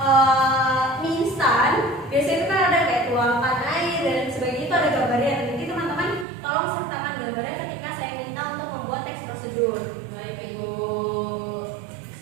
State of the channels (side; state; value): left; drops out; at 6.2 s